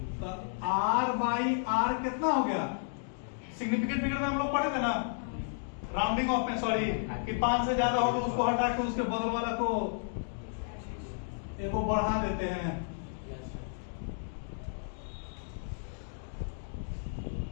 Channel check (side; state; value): right; silent; digital silence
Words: तो R बाई R कितना हो गया, सिग्निफिकेंट फिगर में हम लोग पढ़े थे ना, राउंडिंग ऑफ में, सॉरी, कि 5 से ज्यादा हो तो उसको हटा के उसके बगल वाला को एक को बढ़ा देते हैं।